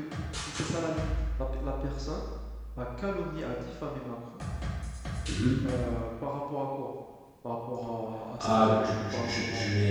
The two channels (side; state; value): both; identical; correlation 1.00